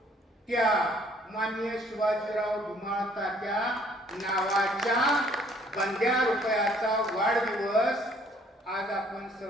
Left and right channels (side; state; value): both; normal; correlation 0.60